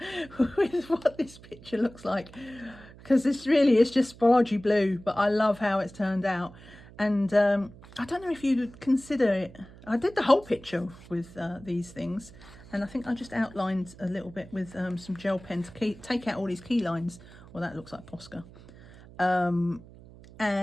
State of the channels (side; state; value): right; noise; hum, 20 dB below the sound